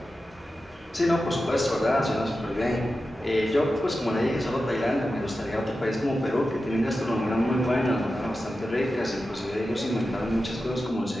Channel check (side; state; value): both; normal; correlation 0.92